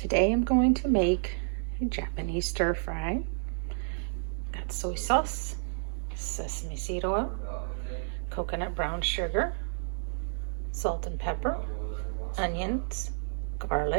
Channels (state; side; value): silent; left; 57 dB below the other